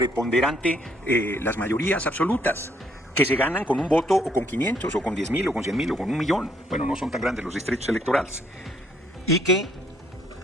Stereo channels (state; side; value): normal; both; correlation 0.68